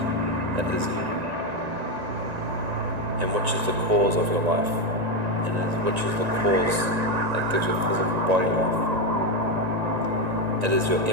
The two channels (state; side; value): late; left; 1.9 ms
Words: that is you, and which is the cause of your life, and which is the cause that gives your physical body life. It is your